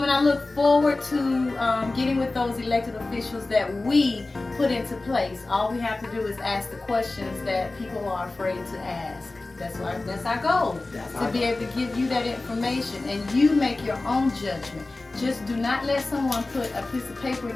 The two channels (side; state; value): right; quieter; 3.2 dB